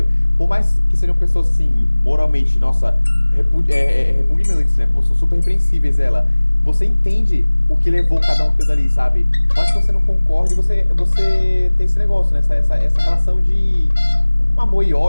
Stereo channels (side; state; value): both; inverted; correlation -1.00